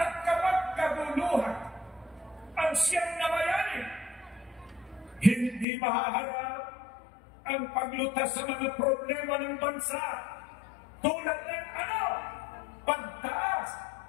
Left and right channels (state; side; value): drops out; right; at 5.7 s